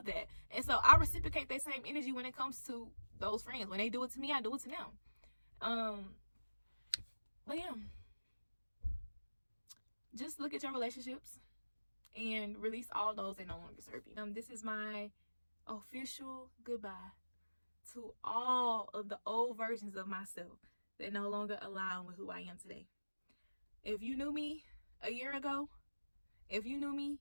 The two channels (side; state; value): both; inverted; correlation -1.00